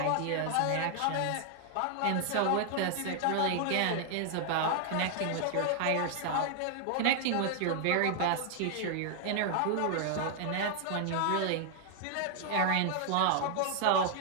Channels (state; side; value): different; both; correlation 0.00